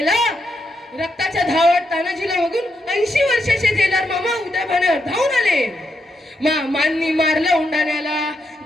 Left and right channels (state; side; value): normal; both; correlation 0.82